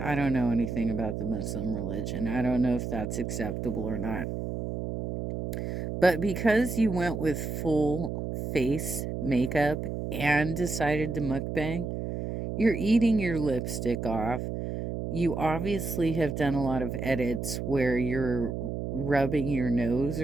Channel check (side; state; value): right; noise; hum, 4 dB below the sound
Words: anything about the Muslim religion. I don't know if that's acceptable or not. But because you went with full face makeup and decided to mukbang, you're eating your lipstick off. You obviously have done a lot of edits where you're rubbing your nose